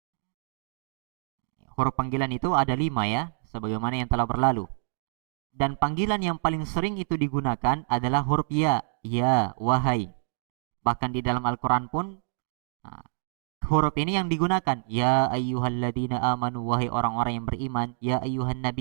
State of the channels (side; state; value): left; silent; digital silence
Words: itu ada 5 ya, sebagaimana yang telah berlalu. Dan panggilan yang paling sering itu digunakan adalah huruf ya, wahai. Bahkan di dalam Al-Quran pun huruf ini yang digunakan. Ya ayyuhalladzina amanu, wahai orang-orang yang beriman. Ya ayyuhan